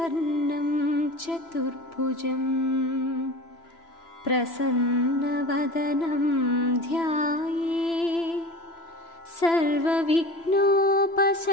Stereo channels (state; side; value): late; right; 3.0 ms